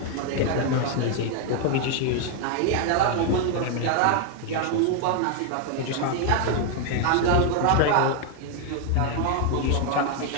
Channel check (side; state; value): both; different; correlation 0.00